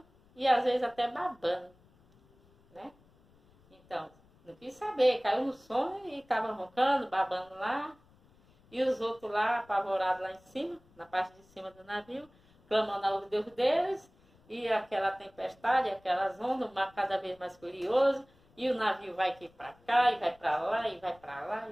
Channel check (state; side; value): noise; left; rumble, 30 dB below the sound